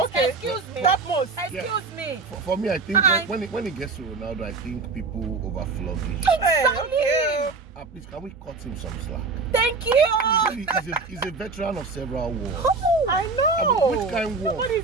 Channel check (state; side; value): quieter; left; 4.1 dB